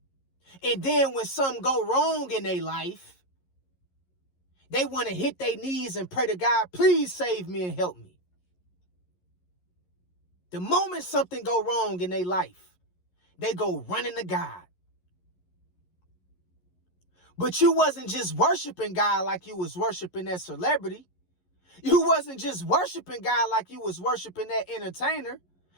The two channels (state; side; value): late; right; 11 ms